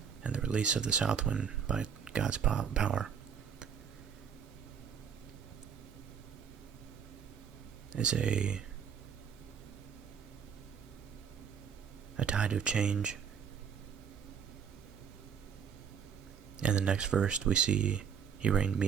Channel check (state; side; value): quieter; left; 7.3 dB